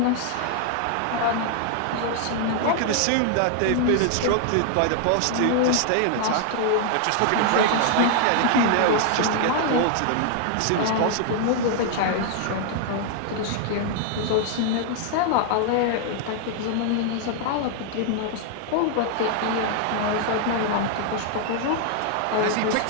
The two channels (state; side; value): different; both; correlation 0.00